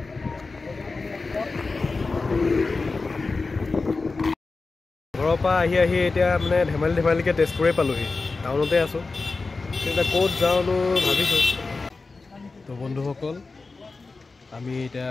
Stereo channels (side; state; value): right; quieter; 3.9 dB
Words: ঘৰৰ পৰা আহি এতিয়া মানে ধেমালিকৈ তেজপুৰে পালোহি। টাউনতে আছোঁ, এতিয়া ক'ত যাওঁনো ভাবিছোঁ। তো বন্ধুসকল, আমি এতিয়া